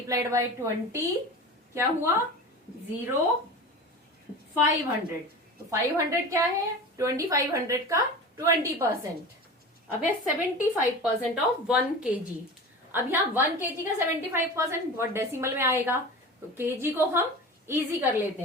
बाय 20 क्या हुआ, 0 500। तो 500 क्या है, 2500 का 20%। अब है 75% ऑफ 1 kg। अब यहाँ 1 kg का 75% बहुत डेसिमल में आएगा, तो kg को हम इजी कर लेते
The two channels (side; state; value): both; normal; correlation 0.32